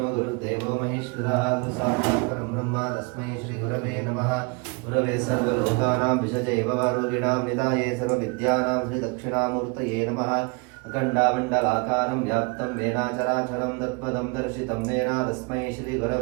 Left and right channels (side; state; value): left; quieter; 31.1 dB